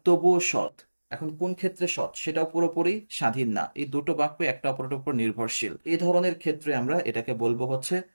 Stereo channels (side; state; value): both; inverted; correlation -1.00